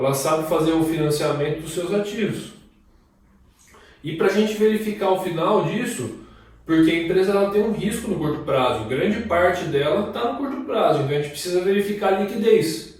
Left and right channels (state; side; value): identical; both; correlation 1.00